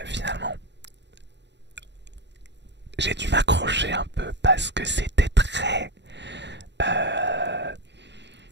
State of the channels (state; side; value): late; left; 0.51 ms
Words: finalement. J'ai dû m'accrocher un peu parce que c'était euh,